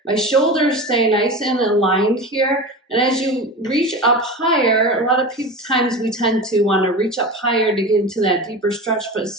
my shoulders stay nice and aligned here. And as you reach up higher, a lot of times we tend to want to reach up higher to get into that deeper stretch, but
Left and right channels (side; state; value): both; normal; correlation 0.28